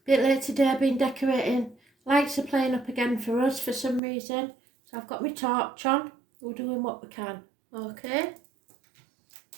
late today, I've been decorating. Lights are playing up again for us for some reason. So I've got my torch on. We're doing what we can. Okay.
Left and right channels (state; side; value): drops out; left; at 4.0 s